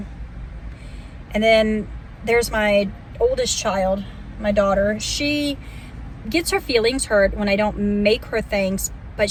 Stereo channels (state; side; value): identical; both; correlation 1.00